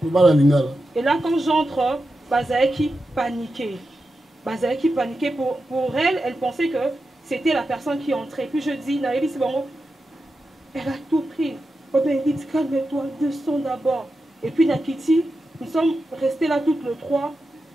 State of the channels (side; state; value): both; normal; correlation 0.90